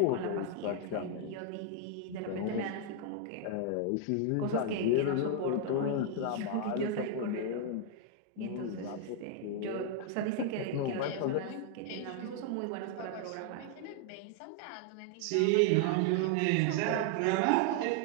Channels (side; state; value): both; different; correlation 0.00